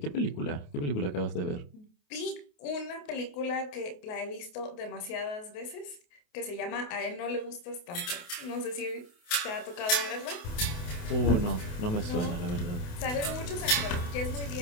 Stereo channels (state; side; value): late; right; 28 ms